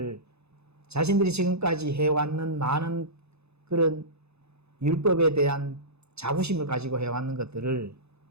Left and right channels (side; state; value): left; late; 0.80 ms